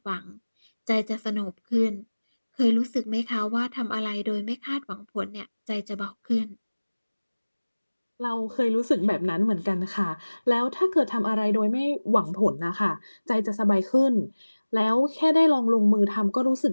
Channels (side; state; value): both; inverted; correlation -1.00